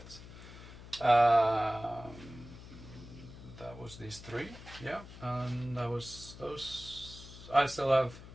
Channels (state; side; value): noise; left; hum, 15 dB below the sound